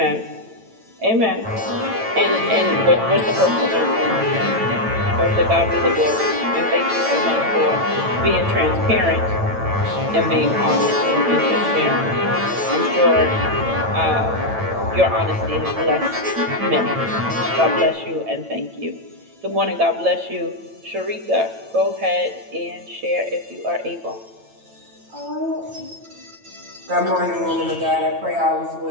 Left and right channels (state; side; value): late; left; 9.0 ms